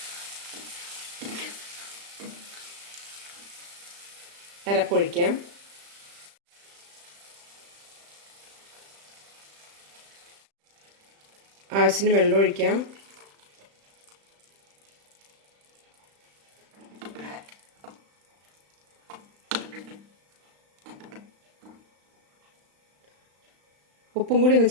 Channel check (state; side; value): late; left; 35 ms